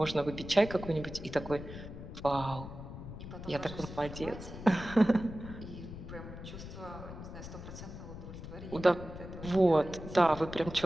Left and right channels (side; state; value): left; noise; rumble, 11 dB below the sound